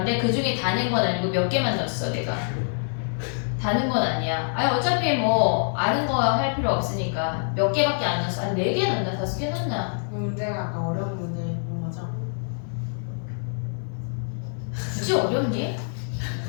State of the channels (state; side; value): silent; right; 57 dB below the other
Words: 그 중에 다 낸 건 아니고 몇 개만 넣었어 내가. 다는 건 아니야. 아니 어차피 뭐 아는 거 할 필요 없으니까 몇 개밖에 안 넣었어. 한 4개 넣나 5개 넣나? 그 문제가 아까 어려운 문제 본 거죠? 굳이 어렵니?